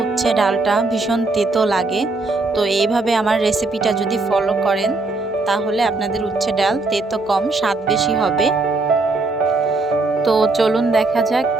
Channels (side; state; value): left; quieter; 3.4 dB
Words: উচ্ছে ডালটা ভীষণ তেতো লাগে। তো এইভাবে আমার রেসিপিটা যদি ফলো করেন তাহলে আপনাদের উচ্ছে ডাল তেতো কম, স্বাদ বেশি হবে। তো চলুন দেখা যাক